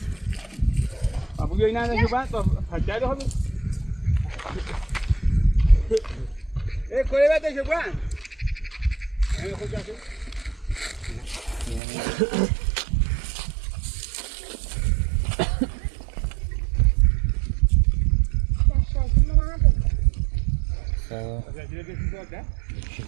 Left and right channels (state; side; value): drops out; left; at 11.8 s